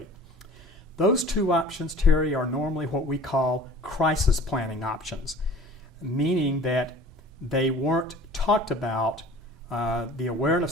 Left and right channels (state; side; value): normal; both; correlation 0.44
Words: Those two options, Terry, are normally what we call crisis planning options, meaning that they weren't talked about. The